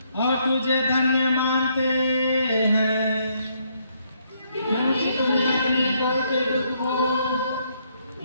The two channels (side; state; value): both; inverted; correlation -0.72